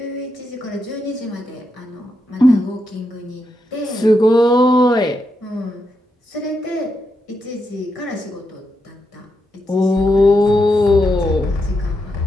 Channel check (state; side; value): normal; both; correlation 0.83